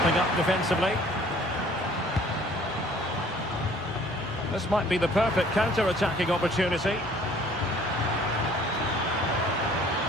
up defensively. This might be the perfect counter-attacking opportunity.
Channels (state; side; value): noise; right; hum, 21 dB below the sound